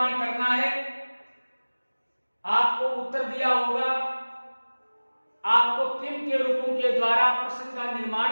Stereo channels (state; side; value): inverted; both; correlation -1.00